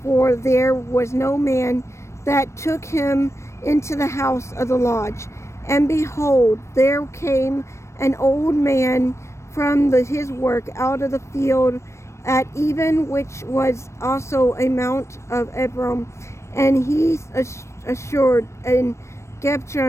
for there was no man that took him into the house of the lodge. And behold, there came an old man from his work out of the field at even, which was also a mount of Ephraim, and he assured in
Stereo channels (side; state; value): right; late; 0.13 ms